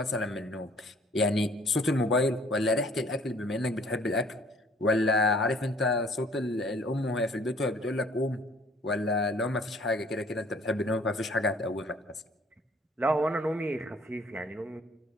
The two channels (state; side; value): normal; both; correlation 0.57